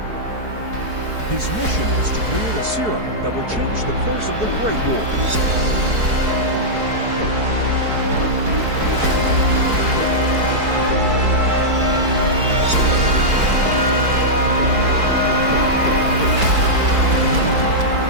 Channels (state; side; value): late; left; 4.6 ms